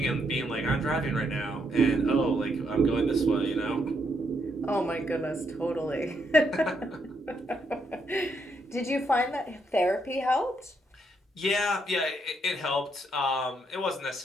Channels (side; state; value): both; normal; correlation 0.76